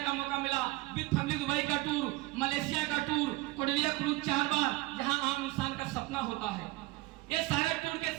मौका मिला, विद फैमिली दुबई का टूर, मलेशिया का टूर, कोडिलिया क्रूज 4 बार, जहां आम इंसान का सपना होता है। ये सारे टूर के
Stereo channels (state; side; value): quieter; left; 20.5 dB